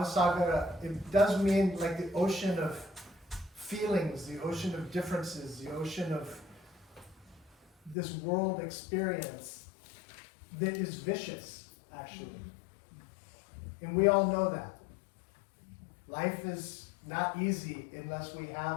it does mean like the ocean of feelings, the ocean of differences, the ocean of this world experience that is vicious, actually. And we all know that. Life is not easy unless we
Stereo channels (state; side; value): drops out; right; at 8.0 s